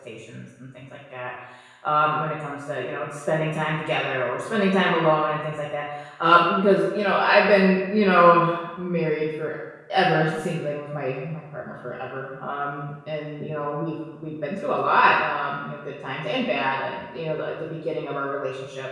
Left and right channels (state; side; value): identical; both; correlation 1.00